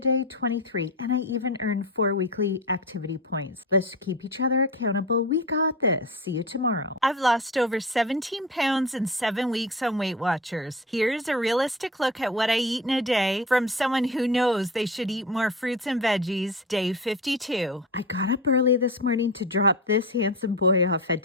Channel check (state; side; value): normal; both; correlation 0.28